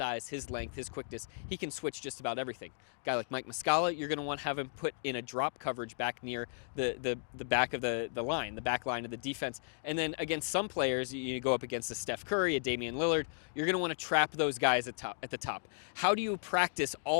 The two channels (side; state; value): right; silent; digital silence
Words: his length, his quickness. He can switch just about everything. A guy like Mike Muscala, you're going to want to have him put in a drop coverage back near the back of the line, the back line of the defense. And then against some players, you go up against a Steph Curry, a Damian Lillard, you're going to want to trap those guys at the top. How do you practice